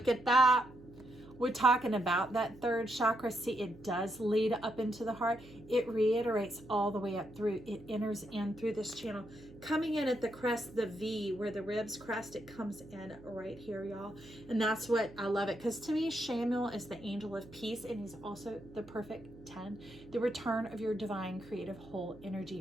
at that. We're talking about that third chakra. See, it does lead up into the heart. It reiterates all the way up through. It enters in through this channel. Coming in at the crest, the V, where the ribs crest, it comes in right here, y'all. And that's what I love it. Because to me, Shamuel is the angel of peace, and he's also the perfect 10. The return of your divine, creative, whole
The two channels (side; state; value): right; noise; hum, 20 dB below the sound